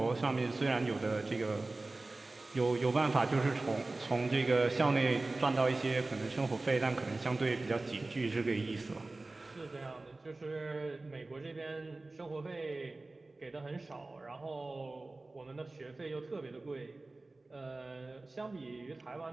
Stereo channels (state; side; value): quieter; left; 3.1 dB